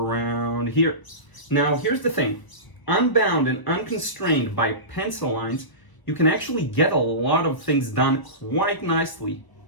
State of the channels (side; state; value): right; late; 1.0 ms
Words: here. Now here's the thing, unbound and unconstrained by pencil lines, you can actually get a lot of things done quite nicely,